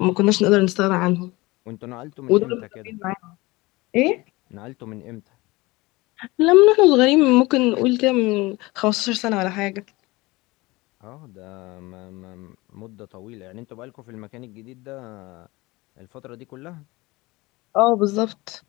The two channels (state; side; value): quieter; right; 22.0 dB